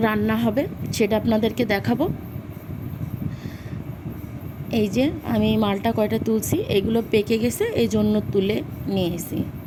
রান্না হবে, সেটা আপনাদেরকে দেখাবো। এই যে আমি মালটা কয়টা তুলছি, এগুলো পেকে গেছে, এই জন্য তুলে নিয়ে এসেছি।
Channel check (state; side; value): identical; both; correlation 1.00